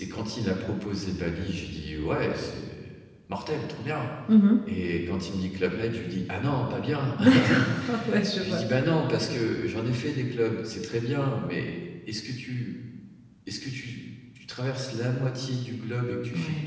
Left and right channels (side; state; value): both; identical; correlation 1.00